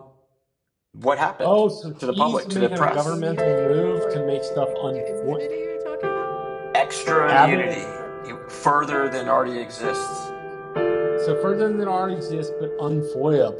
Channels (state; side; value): identical; both; correlation 1.00